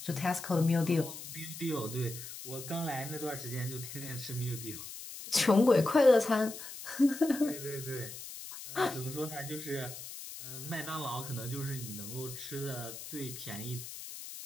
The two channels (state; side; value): noise; left; hiss, 11 dB below the sound